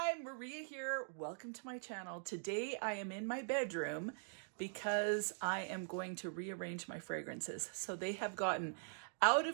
Maria here. Welcome to my channel. Today I am in my bedroom because I am going to rearrange my fragrances. So they have gotten out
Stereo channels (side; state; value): left; silent; digital silence